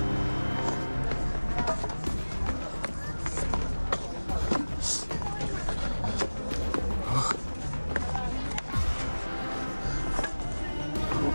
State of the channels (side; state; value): both; inverted; correlation -1.00